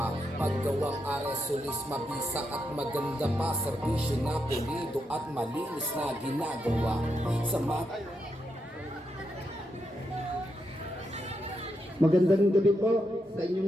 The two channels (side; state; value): both; normal; correlation 0.83